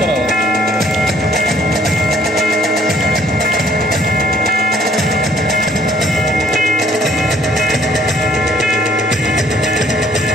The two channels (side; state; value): both; normal; correlation 0.61